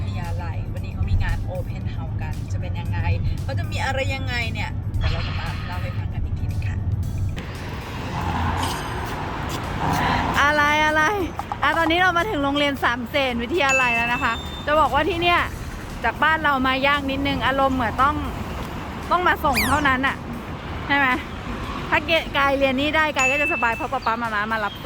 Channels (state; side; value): identical; both; correlation 1.00